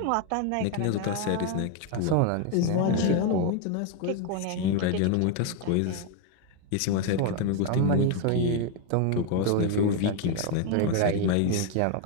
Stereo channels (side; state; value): both; different; correlation 0.01